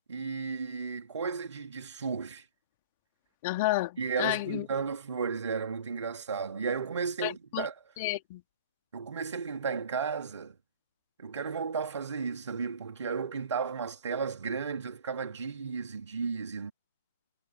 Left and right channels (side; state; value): both; inverted; correlation -0.44